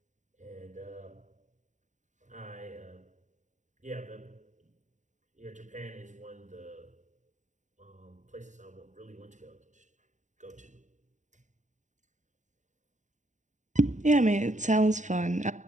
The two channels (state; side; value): late; left; 0.36 ms